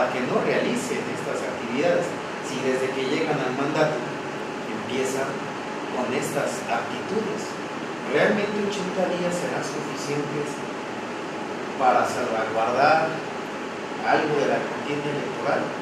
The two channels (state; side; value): identical; both; correlation 1.00